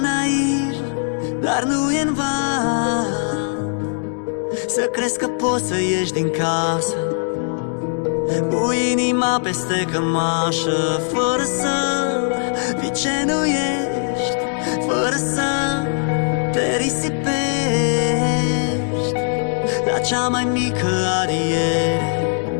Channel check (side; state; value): right; silent; 66 dB below the other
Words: dar nu e-n van să crezi că poți să ieși din casă cu inima peste cămașă, fără să fii ce nu ești, fără să te risipești la cea mai mică adiere,